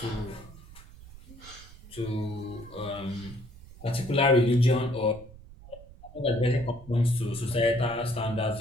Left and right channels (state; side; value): noise; right; rumble, 19 dB below the sound